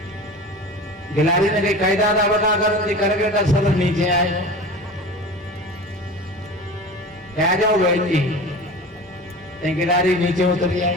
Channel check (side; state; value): both; normal; correlation 0.34